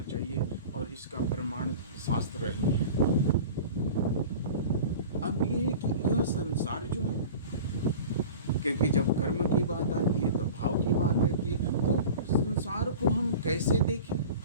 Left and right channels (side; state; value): both; inverted; correlation -0.37